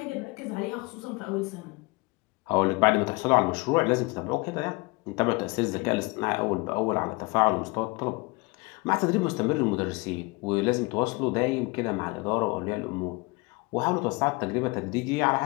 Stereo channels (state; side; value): quieter; right; 26.0 dB